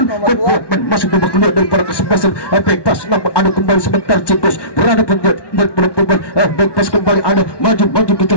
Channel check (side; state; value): right; late; 1.2 ms